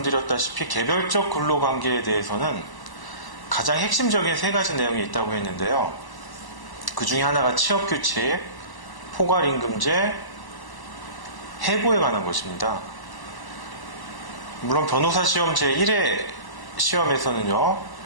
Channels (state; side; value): late; right; 1.0 ms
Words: 개별적 근로관계에 대해서는 가장 핵심적인 세 가지 내용이 있다고 했는데요. 그 중에 하나가 취업규칙, 포괄임금제, 해고에 관한 것입니다. 물론 변호사 시험 제1회 시험에서는요,